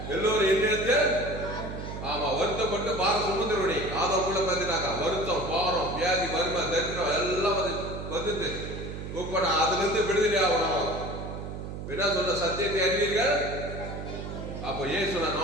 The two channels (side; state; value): right; noise; hum, 8 dB below the sound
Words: எல்லோரும் என்ன? ஆமா, வருத்தப்பட்டு பாரம் சுமந்துருவனே ஆதம் கூட பார்த்துட்டாக்கா வருத்தம், பாரம், வியாதி, வறுமை, தரித்திரம் எல்லாம் வந்துட்டு இப்ப நான் அதுல இருந்து விடுதலை ஆகணும். என்ன சொல்ற? சத்தியத்தை அறிவீர்கள். அப்போ இயேசு